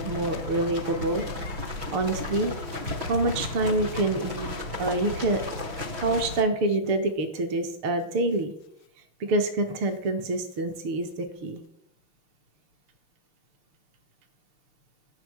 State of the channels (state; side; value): late; left; 6.1 ms